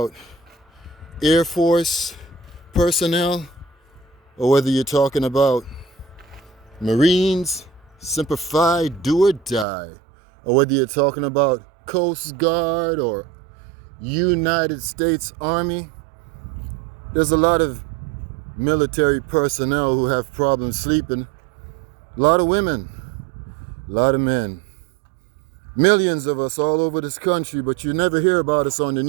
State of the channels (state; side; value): drops out; left; at 9.7 s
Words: Air Force personnel, or whether you're talking about Marines, Semper Fi, do or die, or whether you're talking about Coast Guard or United States Army. There's a lot of military personnel who have problems sleeping. A lot of women, a lot of men. Millions of us all over this country, but you never hear about us on the